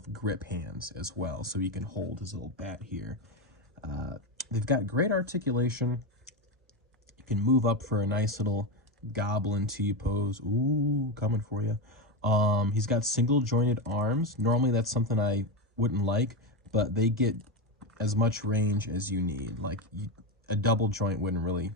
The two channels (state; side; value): normal; both; correlation 0.13